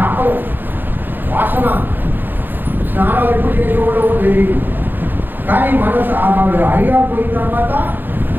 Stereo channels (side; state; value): left; late; 0.092 ms